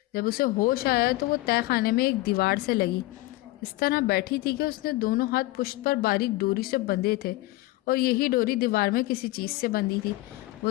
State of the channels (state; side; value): quieter; right; 19.0 dB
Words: जब उसे होश आया तो वो तय खाने में एक दीवार से लगी। इस तरह बैठी थी कि उसने दोनों हाथ पुश्त पर बारीक डोरी से बंधे थे और यही डोरी दीवार में किसी चीज़ से बंधी थी। वो